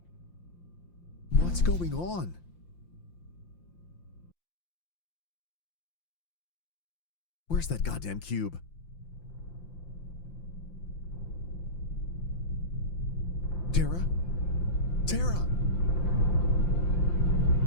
What's going on? Where's that goddamn cube? Tara? Tara!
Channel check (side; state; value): right; late; 5.8 ms